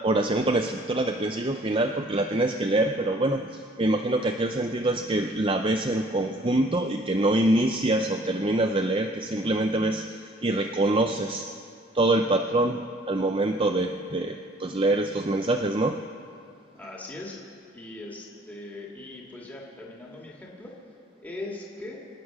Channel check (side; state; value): both; normal; correlation 0.56